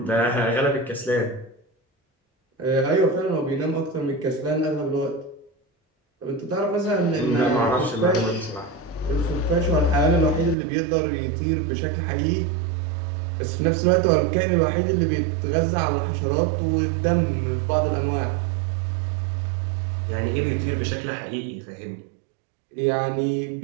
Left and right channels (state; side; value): drops out; left; at 10.6 s